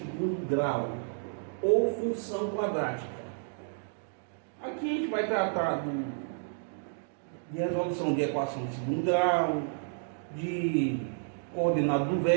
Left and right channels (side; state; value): left; silent; digital silence